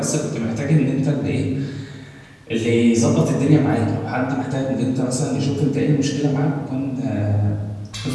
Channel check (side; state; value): both; identical; correlation 1.00